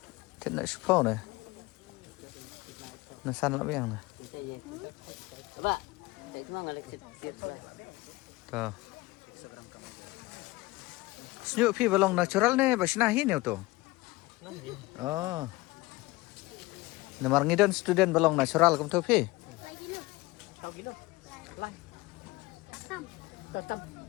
Thế này super này. Nó săn lắm em này. Coba. Saya cuma ngalek siap. Tuh. Senyuk pi balong natural nih, basinahin ya tuh. Oh. Namar ngidon student balong natural kum tuh pi.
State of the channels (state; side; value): quieter; right; 21.1 dB